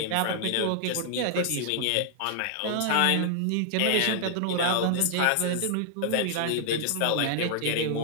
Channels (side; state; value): both; different; correlation 0.00